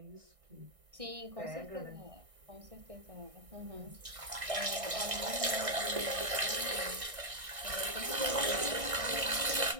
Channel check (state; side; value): late; left; 1.6 ms